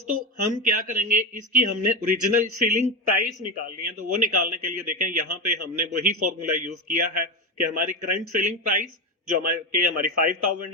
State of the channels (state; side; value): normal; both; correlation 0.15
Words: हम क्या करेंगे, इसकी हमने ओरिजिनल सेलिंग प्राइस निकालनी है। तो वो निकालने के लिए देखें, यहाँ पे हमने वही फॉर्मूला यूज किया है कि हमारी करंट सेलिंग प्राइस जो हमारी